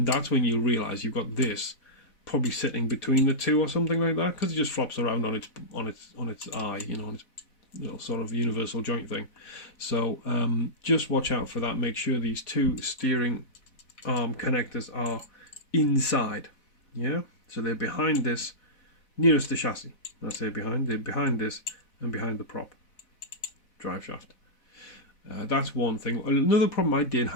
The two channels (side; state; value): right; late; 4.0 ms